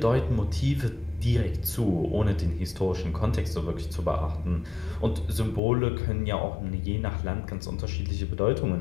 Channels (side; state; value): right; drops out; at 5.6 s